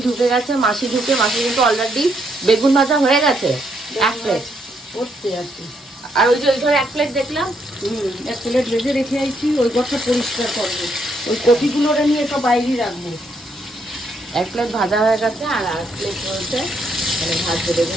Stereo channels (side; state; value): both; normal; correlation 0.75